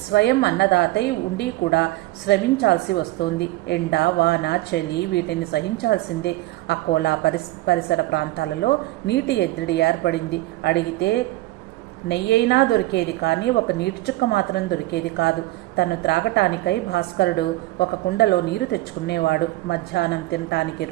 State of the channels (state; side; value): quieter; left; 17.9 dB